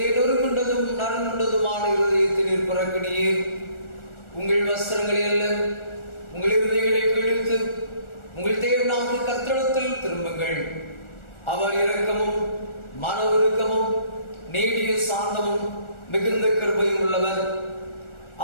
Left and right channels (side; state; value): right; late; 1.4 ms